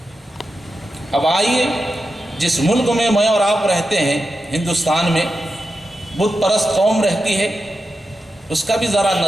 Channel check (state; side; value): normal; both; correlation 0.90